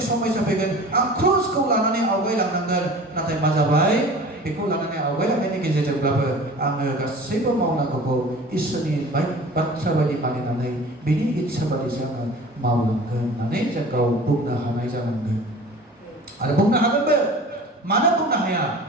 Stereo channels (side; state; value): both; normal; correlation 0.41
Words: समस्या फैगोन आं क्रुजखौ लानानै आवगायलांनांगोन नाथाय मा जाबाय बेखौ लानानै आवगायलांनायनि गेजेरजोंब्लाबो आङो गासैबो मावनांगौखौ इसोरनि बाथ्रा बायदि मानिनानै बिनि इच्छा बादिसो आङो मावलांगोन होननानै जों गाव बुंनो हानाय जानांगोन आरो बुंनो हागोनबो मानो बुंनो हाया